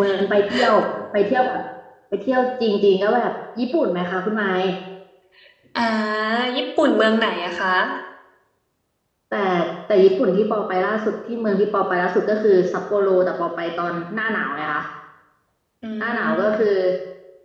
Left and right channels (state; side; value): identical; both; correlation 1.00